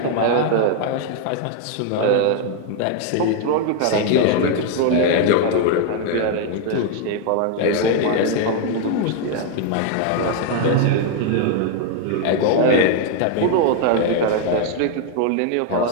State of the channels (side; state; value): both; different; correlation 0.00